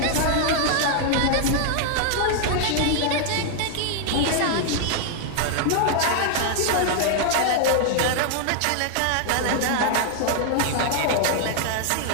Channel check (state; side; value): different; both; correlation 0.00